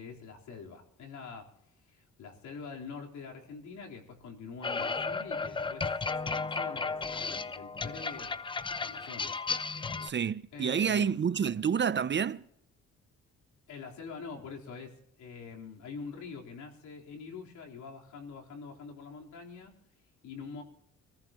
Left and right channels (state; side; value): normal; both; correlation 0.24